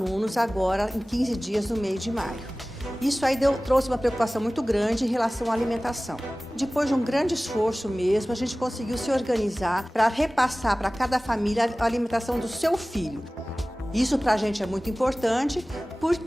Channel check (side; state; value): both; normal; correlation 0.98